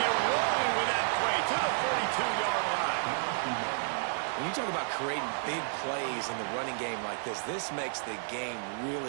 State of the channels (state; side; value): silent; left; digital silence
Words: it rolling with that play to the 42-yard line. When you talk about creating big plays in the running game like this makes the game